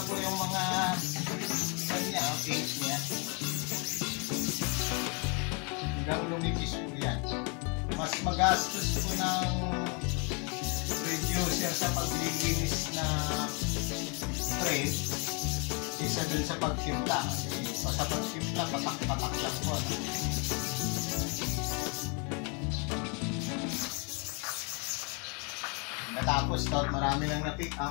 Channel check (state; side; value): quieter; right; 34.1 dB